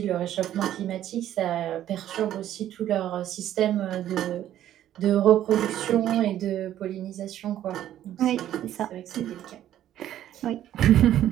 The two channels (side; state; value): left; quieter; 11.9 dB